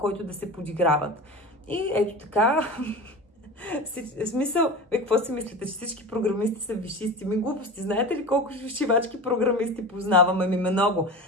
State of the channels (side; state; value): both; normal; correlation 0.31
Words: да се подиграват. И ето така, в смисъл, какво си мислите, че всички програмисти са висшисти? Ми глупости, знаете ли колко шивачки програмисти познаваме? Ми много.